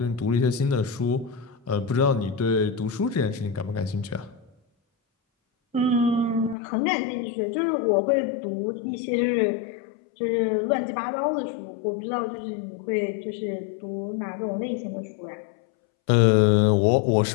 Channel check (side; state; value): right; drops out; at 6.6 s